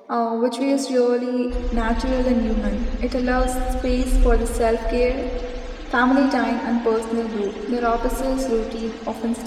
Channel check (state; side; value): identical; both; correlation 1.00